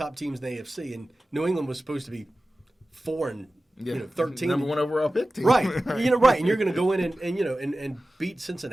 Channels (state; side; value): normal; both; correlation 0.95